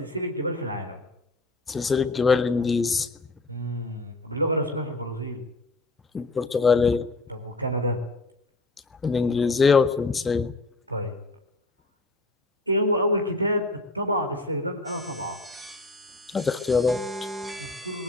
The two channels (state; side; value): quieter; right; 3.1 dB